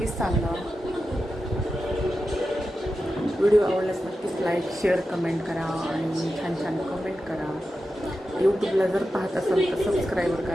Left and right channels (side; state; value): both; normal; correlation 0.91